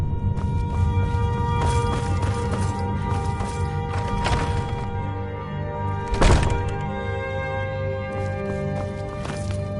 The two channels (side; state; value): both; identical; correlation 1.00